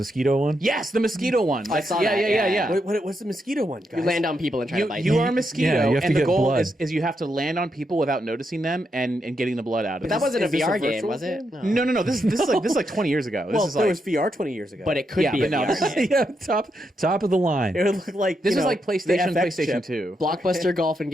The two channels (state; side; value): normal; both; correlation 0.82